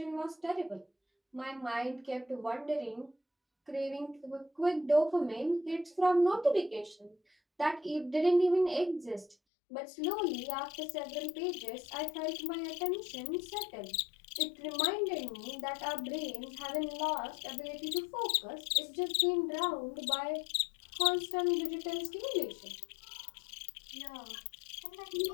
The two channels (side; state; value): right; drops out; at 9.3 s